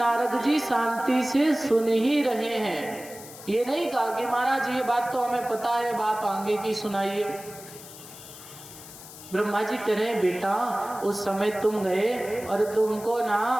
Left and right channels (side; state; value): left; noise; hiss, 16 dB below the sound